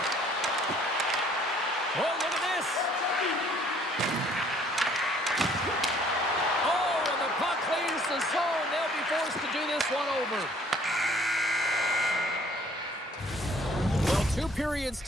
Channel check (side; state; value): both; normal; correlation 0.59